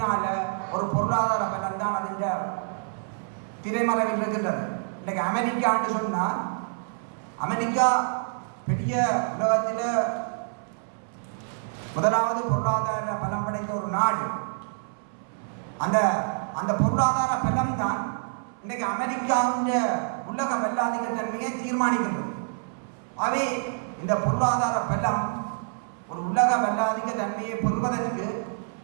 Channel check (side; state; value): left; silent; 60 dB below the other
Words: ஒரு பொருளாதார பலம் தான் அதுங்க திரைமறைவில் இருக்கின்றது. இன்னைக்கு அமெரிக்கான்னு சொன்னால் அமெரிக்கா பெரிய உலகத்தில் முதலாவது பொருளாதார பலம் படைத்த ஒரு நாடு. அந்த அந்த பொருளாதார பலம் தான் இன்னைக்கு அமெரிக்காவுடைய உலக வல்லாதிக்க தன்மையை தீர்மானிக்கின்றது. அவை இந்த பொருளாதார பலம் ஒரு உலக வல்லாதிக்க தன்மையை பெறுவதற்கு